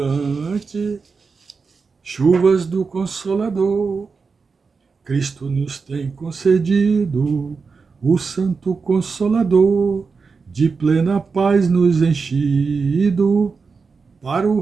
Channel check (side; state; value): left; quieter; 4.9 dB